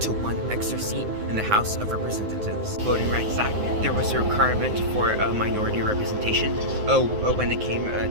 to one extra seat in the House of Representatives. Voting Rights Act, there was a requirement for a minority representation when it came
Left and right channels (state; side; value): late; left; 9.6 ms